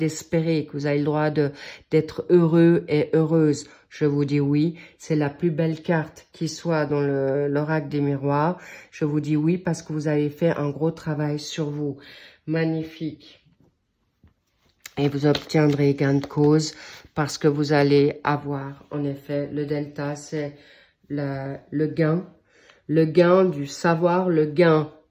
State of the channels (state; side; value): identical; both; correlation 1.00